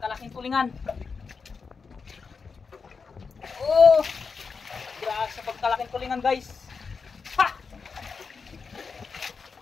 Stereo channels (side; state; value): right; quieter; 5.2 dB